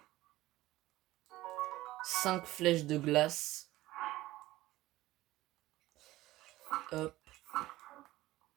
Cinq flèches de glace. Hop.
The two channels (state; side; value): quieter; left; 17.0 dB